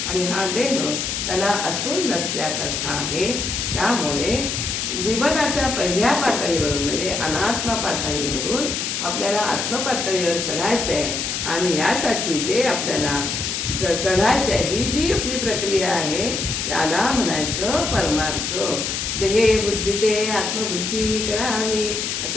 आणि हा देह त्याला असून नसल्यासारखा आहे. त्यामुळे जीवनाच्या पहिल्या पातळीवरून म्हणजे अनात्म पातळीवरून आपल्याला आत्मपातळीवर चढायचं आहे आणि यासाठी जे आपल्याला चढायचं आहे, ही जी आपली प्रक्रिया आहे त्याला म्हणायचं परमार्थ. देहे बुद्धी ते आत्मबुद्धी करावी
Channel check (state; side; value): noise; left; hiss, 2 dB below the sound